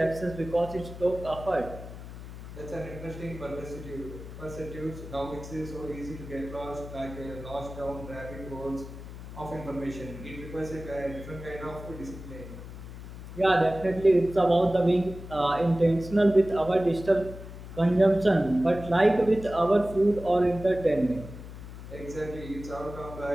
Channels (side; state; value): left; noise; hum, 12 dB below the sound